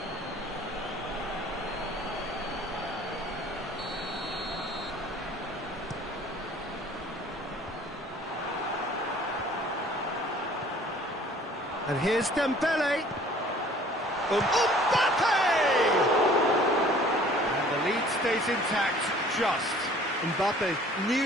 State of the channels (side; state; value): both; normal; correlation 0.52